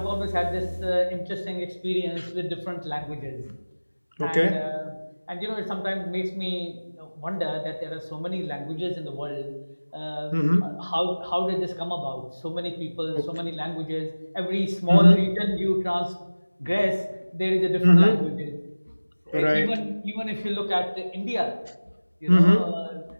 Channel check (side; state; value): both; inverted; correlation -1.00